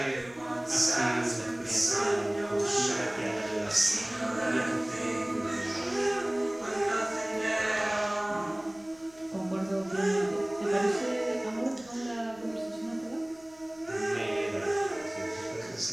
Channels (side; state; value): left; noise; rumble, 27 dB below the sound